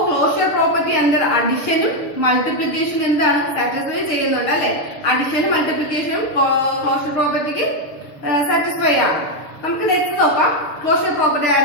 ക്ലോഷർ പ്രോപ്പർട്ടി അണ്ടർ അഡിഷനും മൾട്ടിപ്ലിക്കേഷനും എന്താണ്, സാറ്റിസ്ഫൈ ചെയ്യുന്നുണ്ട് അല്ലെ. അഡിഷനും മൾട്ടിപ്ലിക്കേഷനും ക്ലോഷർ പ്രോപ്പർട്ടിക്ക് സാറ്റിസ്ഫൈ ആണ്. നമുക്ക് നെക്സ്റ്റ് നോക്കാം, ക്ലോഷർ പ്രോപ്പർട്ടി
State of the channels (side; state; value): right; late; 6.5 ms